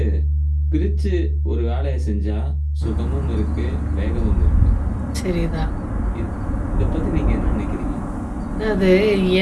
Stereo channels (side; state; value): both; identical; correlation 1.00